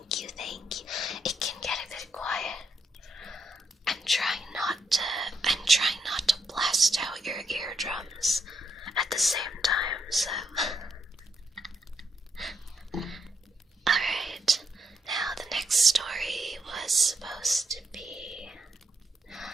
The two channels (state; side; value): normal; both; correlation 0.79